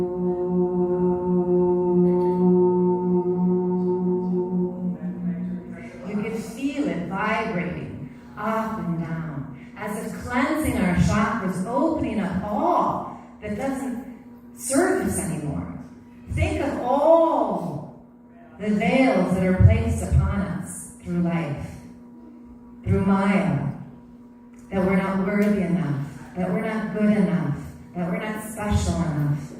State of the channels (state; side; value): identical; both; correlation 1.00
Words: You can feel it vibrating up and down, as if cleansing our chakras, opening up all that doesn't serve us anymore. Think of all the veils that are placed upon us through life, through Maya, that we're not worthy enough, that we're not good enough, that we're not special enough,